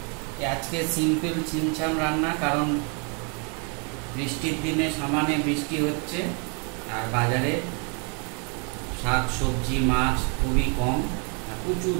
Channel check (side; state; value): left; quieter; 36.6 dB